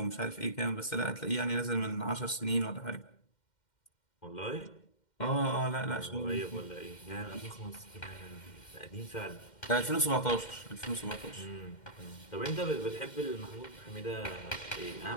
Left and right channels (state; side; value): late; right; 2.1 ms